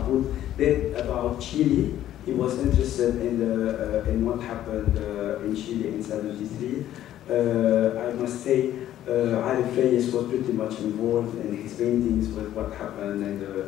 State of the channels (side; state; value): right; quieter; 12.4 dB